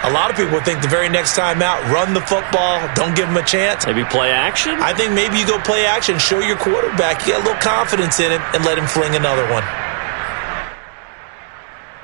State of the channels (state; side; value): silent; left; digital silence